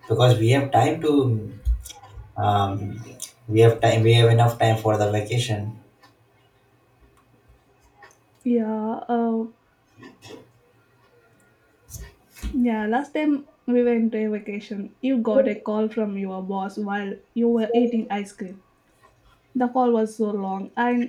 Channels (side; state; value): both; identical; correlation 1.00